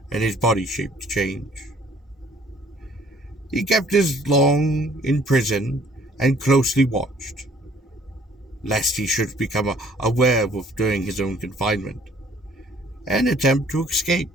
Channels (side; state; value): both; normal; correlation 0.58